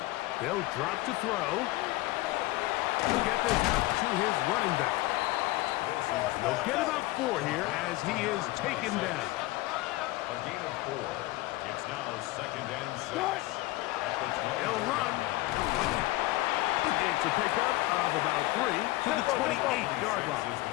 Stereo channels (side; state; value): right; quieter; 19.0 dB